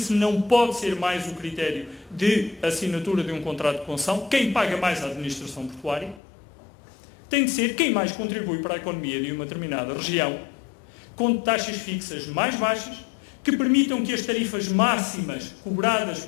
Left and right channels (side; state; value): right; drops out; at 6.2 s